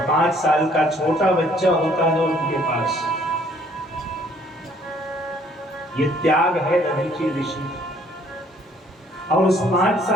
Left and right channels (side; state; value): both; normal; correlation 0.61